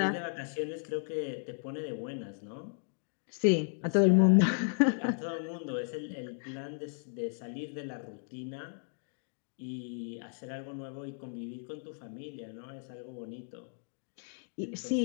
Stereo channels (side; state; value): right; silent; digital silence